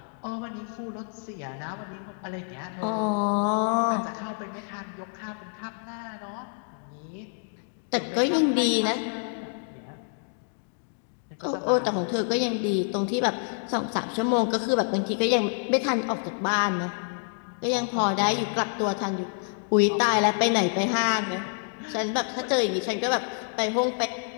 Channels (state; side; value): silent; right; 56 dB below the other